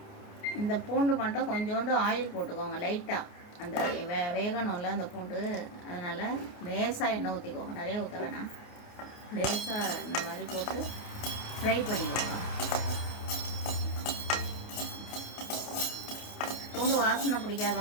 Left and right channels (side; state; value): right; late; 29 ms